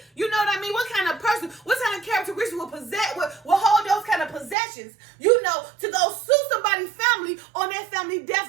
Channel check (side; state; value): left; drops out; at 4.5 s